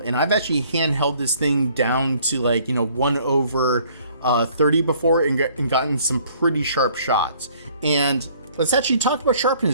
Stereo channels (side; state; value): both; inverted; correlation -0.60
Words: And I've actually handheld this thing down to 1/30 before, and gotten some pretty sharp shots. And let's actually talk about